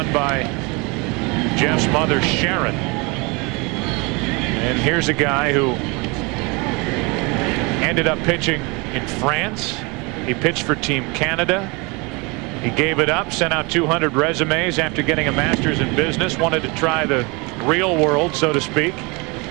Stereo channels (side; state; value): left; quieter; 28.0 dB